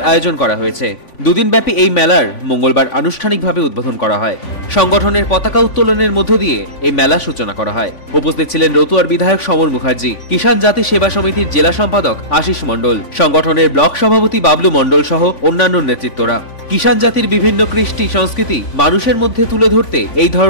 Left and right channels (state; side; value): late; right; 3.5 ms